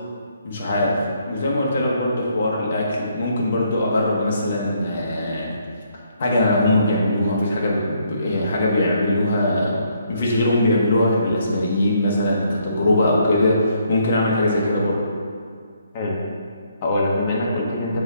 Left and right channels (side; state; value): both; inverted; correlation -0.70